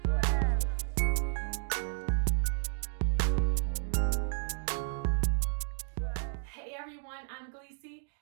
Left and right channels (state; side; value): silent; left; 56 dB below the other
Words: Hey everyone, I'm Gleesy,